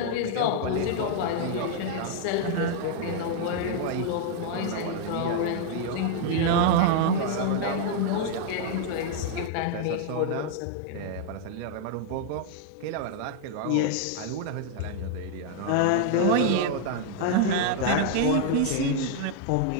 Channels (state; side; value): different; both; correlation 0.00